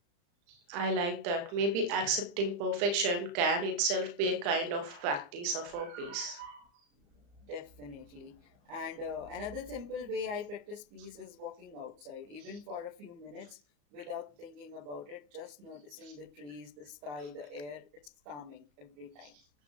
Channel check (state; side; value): late; left; 35 ms